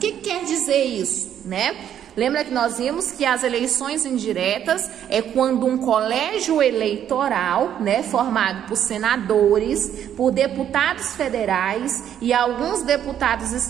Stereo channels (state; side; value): quieter; left; 9.9 dB